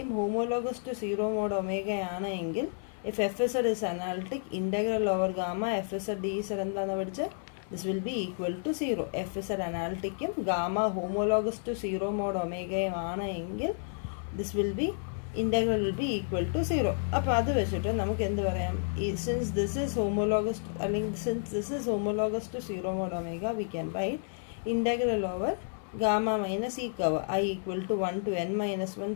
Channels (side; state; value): right; silent; 57 dB below the other